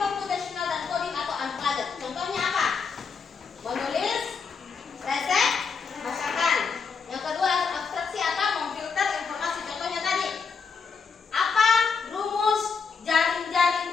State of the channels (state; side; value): quieter; right; 5.5 dB